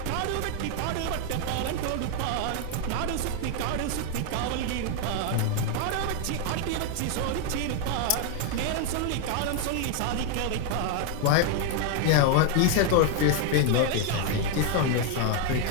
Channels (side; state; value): both; different; correlation 0.01